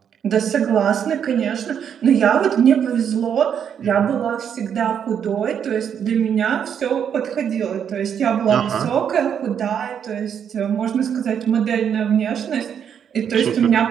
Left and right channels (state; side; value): quieter; left; 8.2 dB